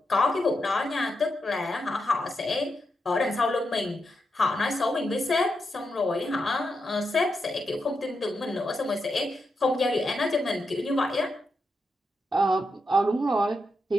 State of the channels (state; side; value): normal; both; correlation 0.85